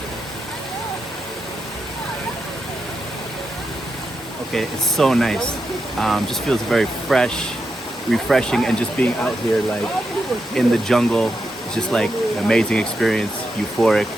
Okay, it's so nice. Just feels very fresh, refreshing, and just being out here like in the jungle, it's just like an amazing experience, euphoric.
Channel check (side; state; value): both; normal; correlation 0.85